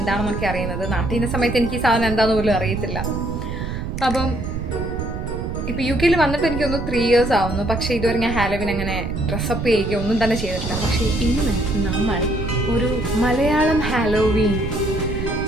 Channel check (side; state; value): right; noise; rumble, 5 dB below the sound